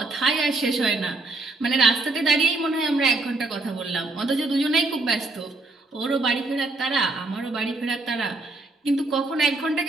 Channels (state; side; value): quieter; left; 3.1 dB